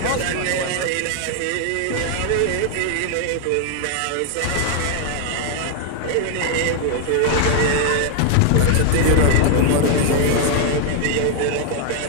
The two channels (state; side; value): different; both; correlation 0.00